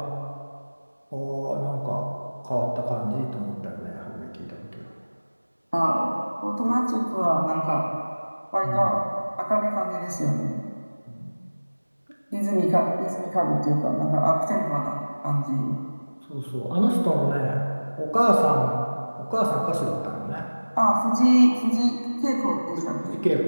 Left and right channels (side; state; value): both; inverted; correlation -1.00